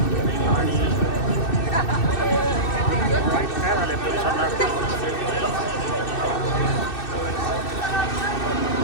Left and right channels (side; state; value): right; late; 2.6 ms